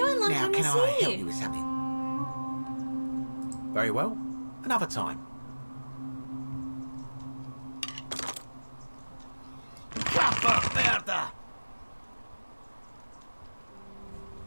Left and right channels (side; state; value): both; inverted; correlation -1.00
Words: Long Now, time can no I see. help you with something? Very well. Another time. Merda!